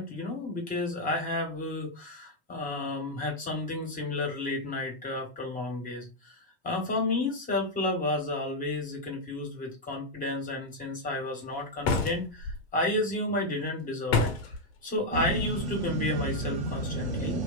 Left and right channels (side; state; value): both; normal; correlation -0.01